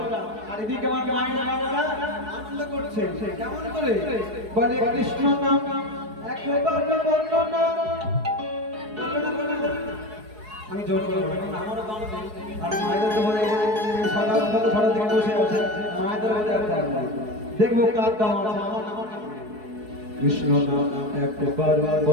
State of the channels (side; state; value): left; late; 4.7 ms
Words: আর এদিকে আমার মায়েরা আনন্দ করছে। কেমন করে বলে কৃষ্ণ নাম একবার বললো না, আমি জোর করে আমারও দাম নেই। আর মায়েদের তো বলে সকাল সকাল থেকে বসে আছে, মায়েদের বলে দেখবো কার দাম আছে। আমার কৃষ্ণ নাম একবার